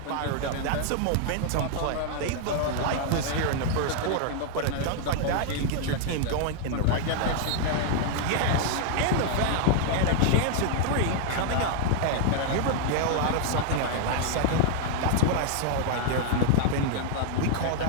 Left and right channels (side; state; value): both; different; correlation 0.00